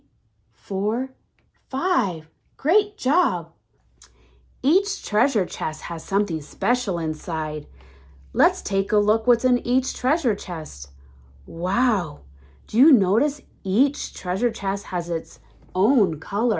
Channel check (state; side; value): identical; both; correlation 1.00